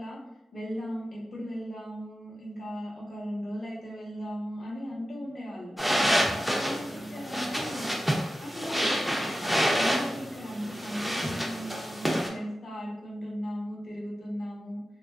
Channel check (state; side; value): normal; both; correlation 0.93